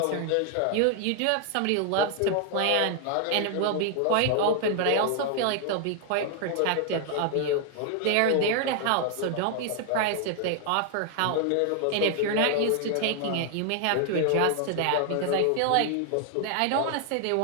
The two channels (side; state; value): both; different; correlation 0.00